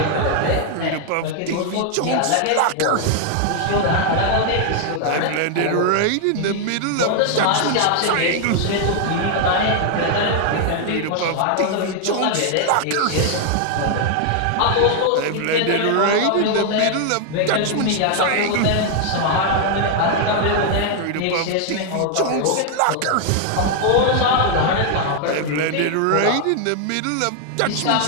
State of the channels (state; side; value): different; both; correlation 0.00